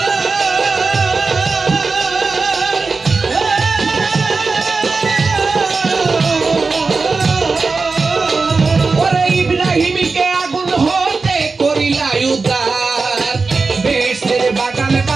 ওরে ইব্রাহিমকে আগুন হতে করিলা উদ্ধার বেহেশতের বাগান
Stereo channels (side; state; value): left; quieter; 4.2 dB